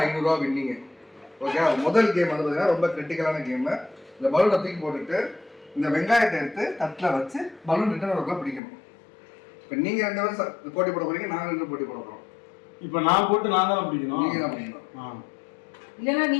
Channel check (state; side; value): drops out; right; at 8.6 s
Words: 500 ரூபா வின்னிங். ஓகே, முதல் கேம் வந்து பார்த்தீங்கன்னா ரொம்ப கிரிட்டிக்கலான கேம். இந்த பலூனை தூக்கி போட்டுட்டு இந்த வெங்காயத்தை எடுத்து தட்டில் வச்சு பலூன் ரிட்டர்ன் ஒர்க்கெலாம் பிடிக்கணும். இப்போ நீங்கள் 2 பேரும் போட்டி போட போறீங்க, நாங்கள் 2 போட்டி போட போகிறோம். இப்போ நான் போட்டு நான் தான் பிடிக்கணும். நீங்கள் தான் பிடிக்கணும். இல்லைன்னா